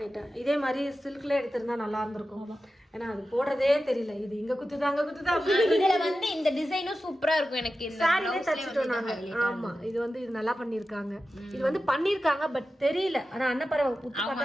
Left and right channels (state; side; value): normal; both; correlation 0.93